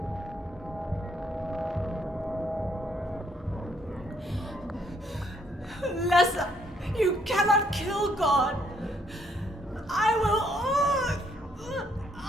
Lessa, you cannot kill God. I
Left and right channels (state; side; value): normal; both; correlation 0.69